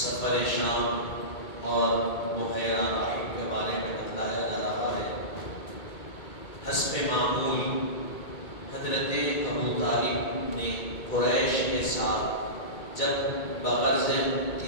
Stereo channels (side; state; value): right; late; 2.2 ms